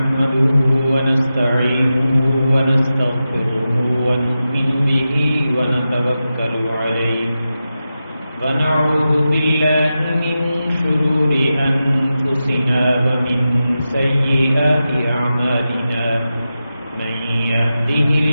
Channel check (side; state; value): both; inverted; correlation -0.91